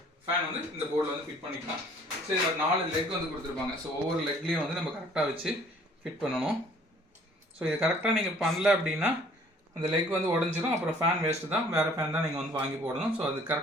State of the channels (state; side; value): normal; both; correlation 0.56